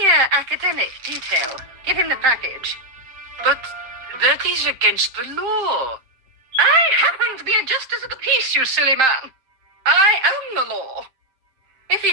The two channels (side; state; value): left; late; 7.2 ms